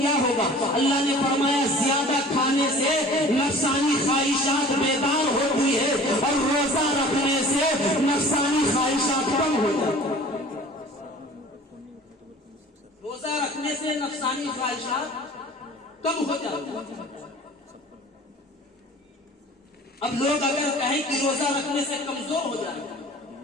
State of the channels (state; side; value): normal; both; correlation 0.45